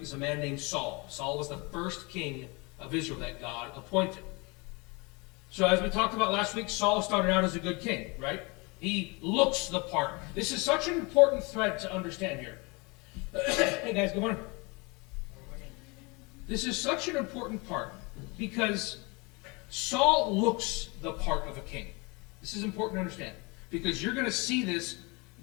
is a man named Saul. Saul was the first king of Israel that God appointed. So as we talked about last week, Saul started out as a good king, right? He looks the part. This is such an important thread to understand here. Hey guys, good morning. This is such an important part because Saul looks the part of a king. This is important to understand because you're going to see this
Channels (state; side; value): quieter; right; 27.9 dB